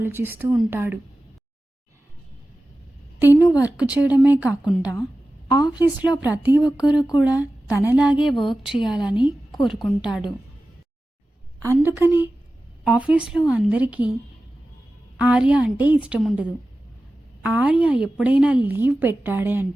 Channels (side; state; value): both; normal; correlation 0.95